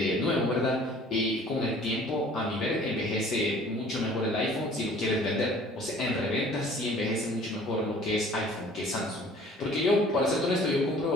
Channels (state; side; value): normal; both; correlation 0.51